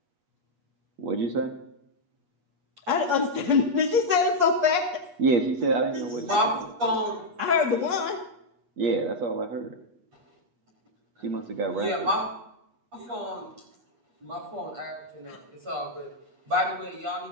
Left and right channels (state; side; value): late; left; 8.3 ms